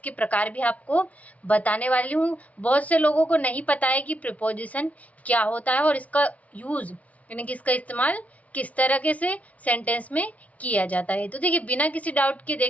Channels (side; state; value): right; late; 0.069 ms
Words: प्रकार भी आपको बताने वाली हूँ। बहुत से लोगों को नहीं पता है कि प्रीपोजिशन क्या होता है और इसका यूज़ यानी कि इसका इस्तेमाल किस तरीके से सेंटेंस में किया जाता है। तो देखिए, बिना किसी डाउट के